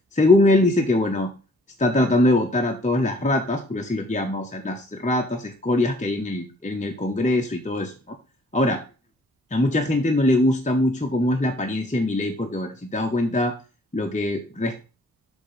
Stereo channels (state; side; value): normal; both; correlation 0.59